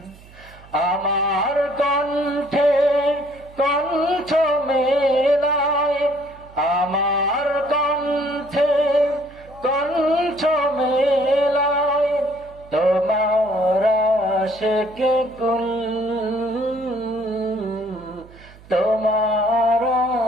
আমার কণ্ঠে কণ্ঠ মেলায়, আমার কণ্ঠে কণ্ঠ মেলায়, তোমার আশিকে কুল, তোমার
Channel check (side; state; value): right; noise; hum, 22 dB below the sound